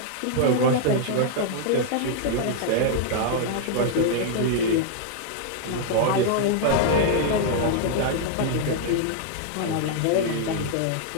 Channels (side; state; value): both; different; correlation -0.01